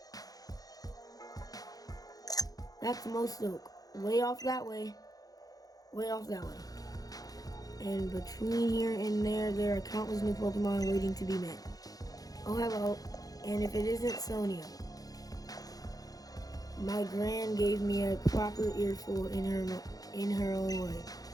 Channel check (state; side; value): late; right; 0.18 ms